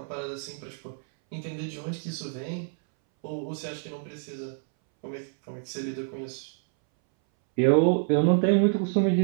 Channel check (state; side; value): silent; left; 60 dB below the other